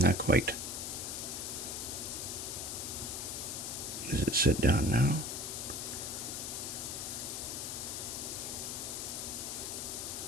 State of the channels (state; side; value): noise; left; hiss, 4 dB below the sound